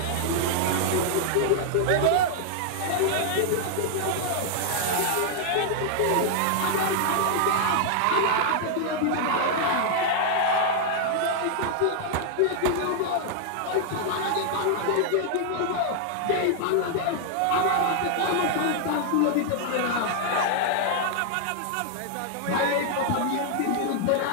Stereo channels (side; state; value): both; different; correlation 0.00